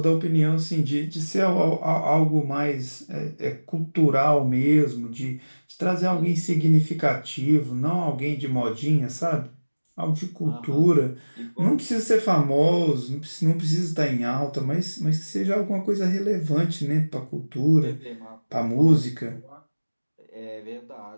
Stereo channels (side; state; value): both; inverted; correlation -1.00